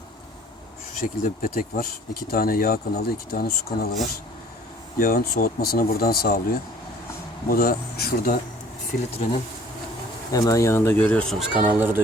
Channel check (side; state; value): both; normal; correlation 0.53